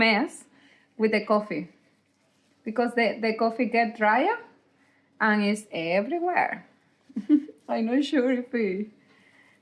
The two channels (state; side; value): identical; both; correlation 1.00